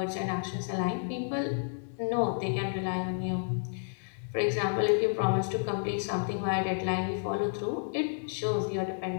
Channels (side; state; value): right; silent; 57 dB below the other